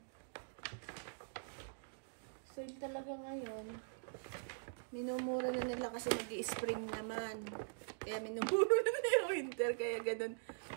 Sale talaga ngayon. Minumura na nila kasi mag-i-spring naman. Kaya minumura na yung winter. Kaya ganun.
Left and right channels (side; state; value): left; silent; digital silence